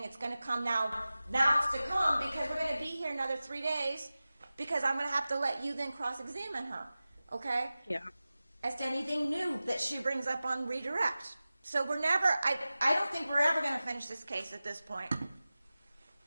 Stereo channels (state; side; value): inverted; both; correlation -0.96